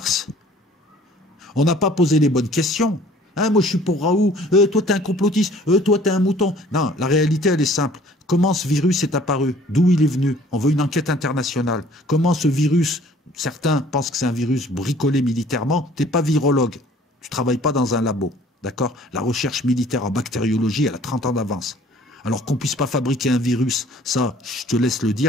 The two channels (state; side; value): normal; both; correlation 0.54